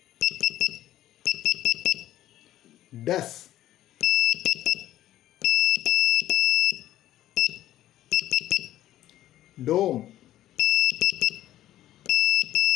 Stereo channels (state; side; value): quieter; right; 13.5 dB